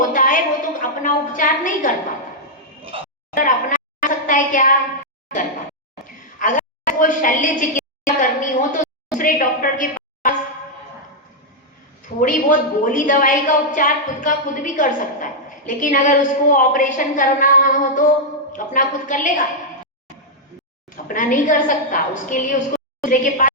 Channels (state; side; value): normal; both; correlation -0.04